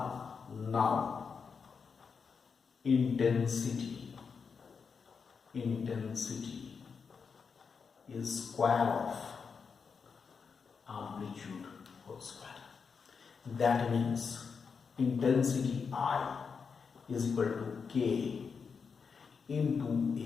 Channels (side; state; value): right; quieter; 5.7 dB